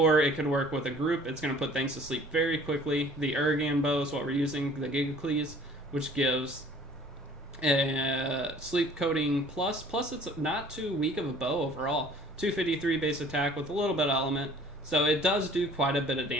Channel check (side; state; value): both; normal; correlation 0.51